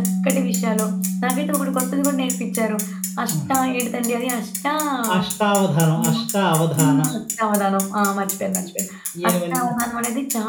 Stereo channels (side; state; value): both; identical; correlation 1.00